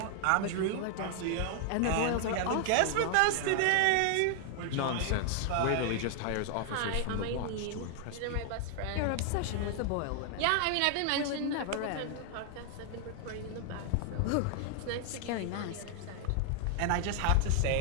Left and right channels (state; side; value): different; both; correlation 0.00